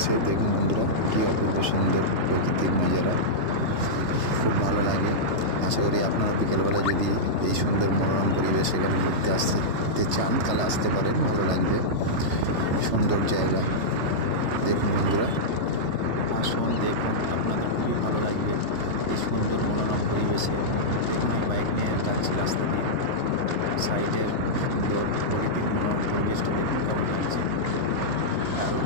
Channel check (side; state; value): left; late; 3.3 ms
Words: দেখুন বন্ধুরা, কি অপূর্ব সুন্দর প্রকৃতির নজারা, খুব ভালো লাগে। আশা করি আপনারা বিকেলবেলা যদি এই সুন্দর মনোরম পরিবেশ এখানে ঘুরতে আসতে চান তাহলে আসতে পারেন, ভালো লাগবে। সুন্দর জায়গা, দেখুন বন্ধুরা, আসুন দেখুন, আপনাদের খুবই ভালো লাগবে এই সুন্দর মনোরম পরিবেশে। দেখুন আমি বাইক নিয়ে যাচ্ছি রাস্তা দিয়ে, সাইডের সুন্দর প্রকৃতির মনোরম পরিবেশটা দেখুন কেমন লাগছে, দারুণ।